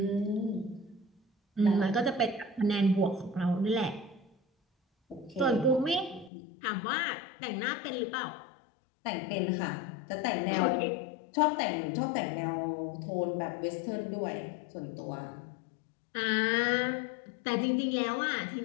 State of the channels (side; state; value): right; drops out; at 6.3 s